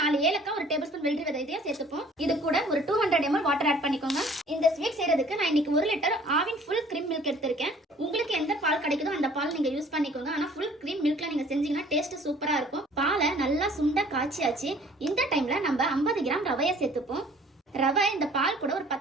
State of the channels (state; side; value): normal; both; correlation 0.53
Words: 4 ஏலக்காய், ஒரு டேபிள் ஸ்பூன் வெள்ளரி விதை இதையும் சேர்த்துப்போம். இது கூட ஒரு 200 ml வாட்டர் ஆட் பண்ணிக்கோங்க. இந்த ஸ்வீட் செய்யறதுக்கு நான் இன்னைக்கு 1 litre Aavin full cream milk எடுத்திருக்கேன். உங்களுக்கு எந்த பால் கிடைக்குதோ அந்த பால் நீங்க யூஸ் பண்ணிக்கோங்க. ஆனா ஃபுல் கிரீம் மில்க்ல நீங்க செஞ்சீங்கன்னா டேஸ்ட் சூப்பரா இருக்கும். பாலை நல்லா சுண்ட காய்ச்சியாச்சு. இந்த டைம்ல நம்ம 50 கிராம் ரவையை சேர்த்துப்போம். ரவை இந்த பால் கூட ஒரு